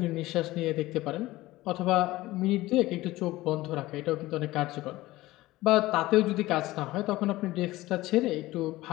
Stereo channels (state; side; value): quieter; right; 17.9 dB